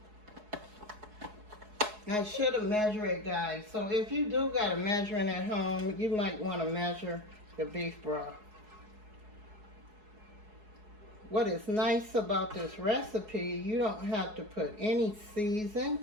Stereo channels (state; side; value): late; left; 4.7 ms